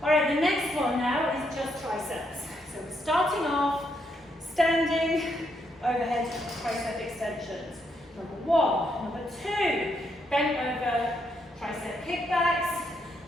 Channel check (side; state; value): both; normal; correlation 0.77